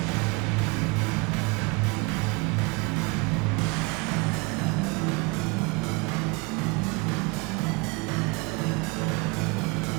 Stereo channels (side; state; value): left; quieter; 27.2 dB